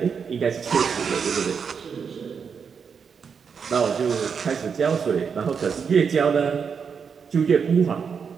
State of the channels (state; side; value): quieter; left; 6.3 dB